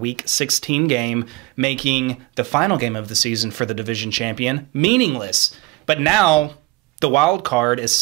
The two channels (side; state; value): left; quieter; 22.1 dB